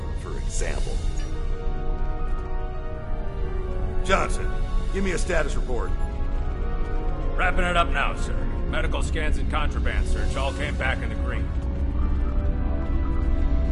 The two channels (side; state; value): both; identical; correlation 1.00